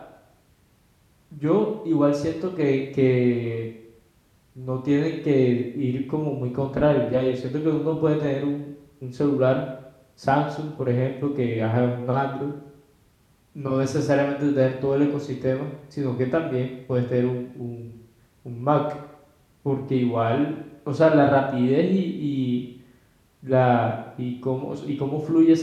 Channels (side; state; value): both; identical; correlation 1.00